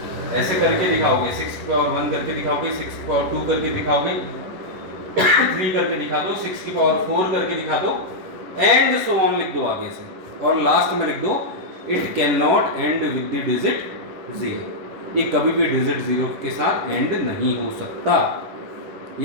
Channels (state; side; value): late; left; 11 ms